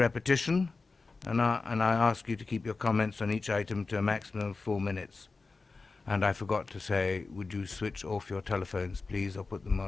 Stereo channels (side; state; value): right; quieter; 4.0 dB